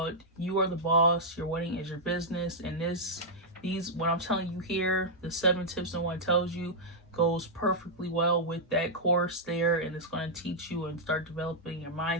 You Are the Boss, Your Wedding is Your Business. And these what I'm telling you here, the 7 tips no one tells you, goes perfectly well with that course there, and it's going to teach you and start developing your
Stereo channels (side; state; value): both; normal; correlation -0.07